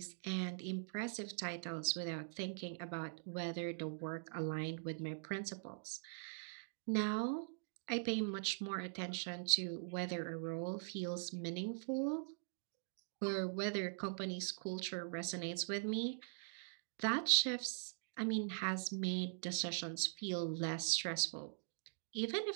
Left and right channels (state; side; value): silent; left; digital silence